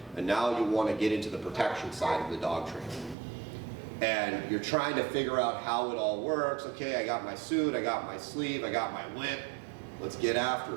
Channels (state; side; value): drops out; left; at 3.2 s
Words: and now you want to get into the protection side of the dog training. And you're trying to figure out how it all works. Okay, I got my suit, I got my sleeve, I got my whip, let's get